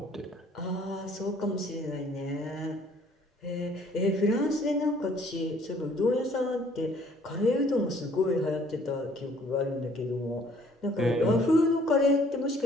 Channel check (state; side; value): normal; both; correlation 0.59